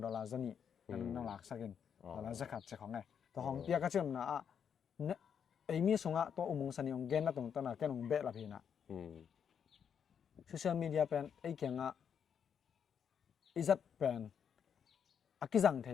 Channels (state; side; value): quieter; right; 7.7 dB